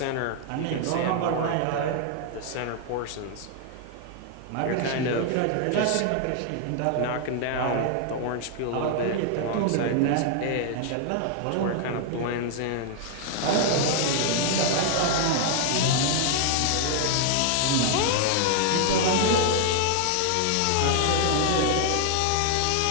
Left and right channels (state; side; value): different; both; correlation 0.00